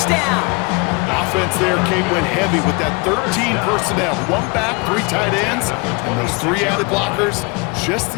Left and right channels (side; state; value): right; quieter; 28.8 dB